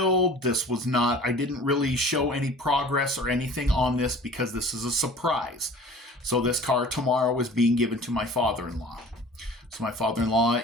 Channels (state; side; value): normal; both; correlation 0.45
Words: I didn't really show any progress or anything on this because this is a surprise. So this car tomorrow is being given to my father-in-law. So my father-in-law